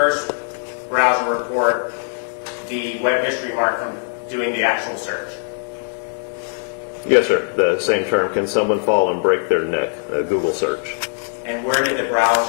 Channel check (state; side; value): silent; right; digital silence